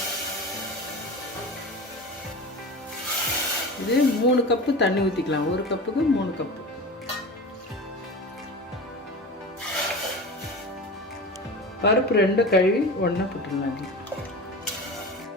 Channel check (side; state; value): both; normal; correlation 0.31